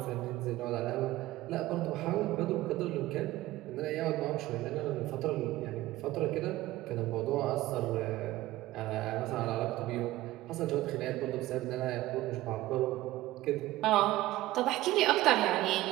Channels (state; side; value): quieter; left; 16.8 dB